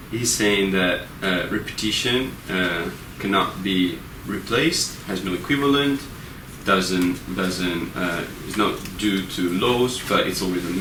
saying that repetition cannot be replaced, has no equivalent, is not due to laws, but it's always a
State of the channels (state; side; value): identical; both; correlation 1.00